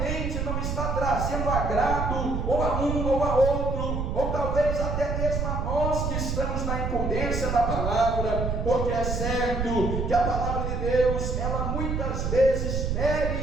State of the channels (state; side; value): noise; right; rumble, 1 dB below the sound